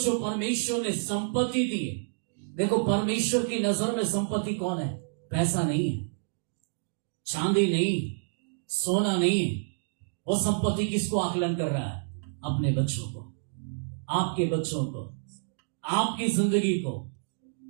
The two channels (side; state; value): left; silent; digital silence